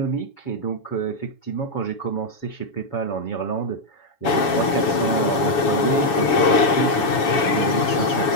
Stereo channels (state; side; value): late; right; 7.1 ms